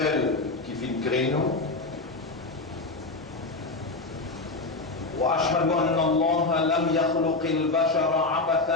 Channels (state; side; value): quieter; right; 3.4 dB